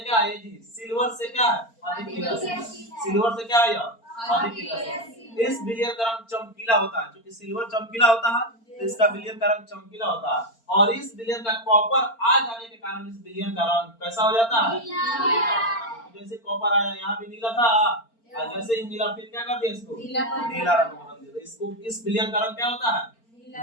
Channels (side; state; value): right; late; 4.4 ms